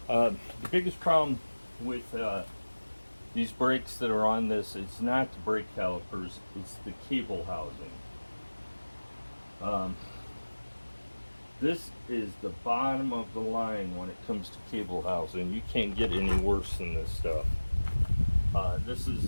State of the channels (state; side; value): inverted; both; correlation -1.00